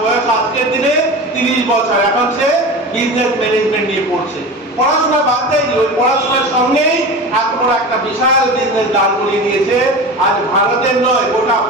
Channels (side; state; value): both; normal; correlation 0.31